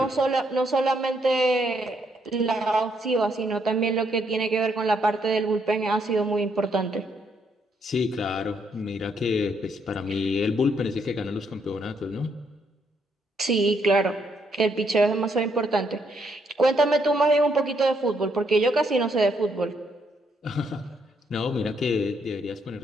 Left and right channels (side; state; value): both; normal; correlation 0.74